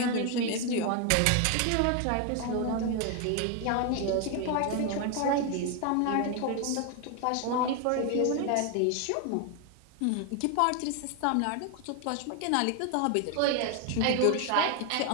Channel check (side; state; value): both; different; correlation 0.01